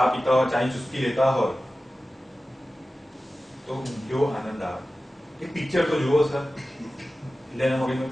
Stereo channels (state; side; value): normal; both; correlation 0.95